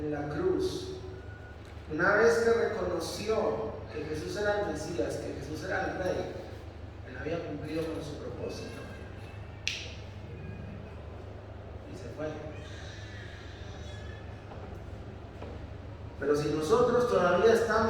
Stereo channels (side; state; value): both; identical; correlation 1.00